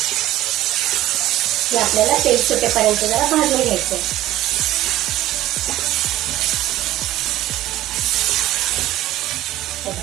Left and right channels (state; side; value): quieter; left; 14.8 dB